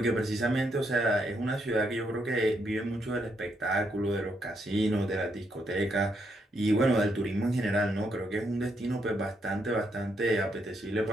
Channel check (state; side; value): normal; both; correlation 0.77